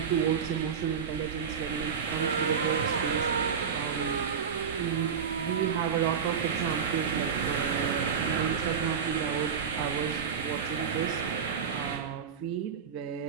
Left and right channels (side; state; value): left; quieter; 6.9 dB